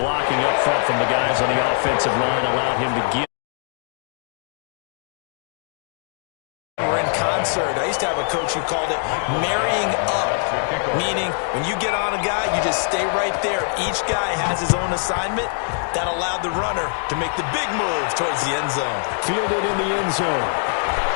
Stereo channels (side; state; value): right; silent; digital silence